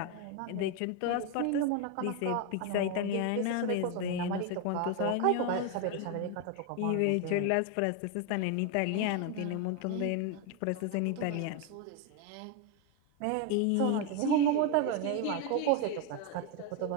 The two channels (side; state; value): both; different; correlation 0.01